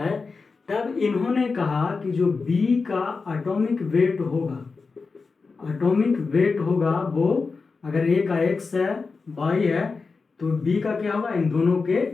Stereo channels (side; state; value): right; quieter; 4.5 dB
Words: तब इन्होंने कहा कि जो बी का एटॉमिक वेट होगा वो अगर ए का x है, y है, तो b का क्या होगा, इन दोनों के